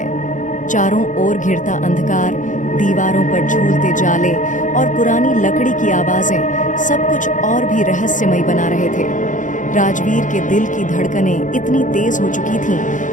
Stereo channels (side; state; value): right; late; 0.37 ms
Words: चारों ओर घिरता अंधकार, दीवारों पर झूलते जाले और पुरानी लकड़ी की आवाजें सब कुछ और भी रहस्यमय बना रहे थे। राजवीर के दिल की धड़कनें इतनी तेज हो चुकी